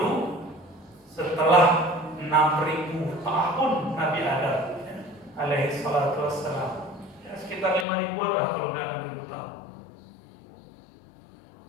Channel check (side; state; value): right; drops out; at 7.9 s